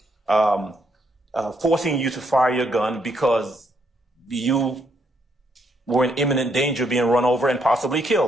Forcing you to fire your gun because you were in imminent danger of being run over and possibly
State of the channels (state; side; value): normal; both; correlation 0.74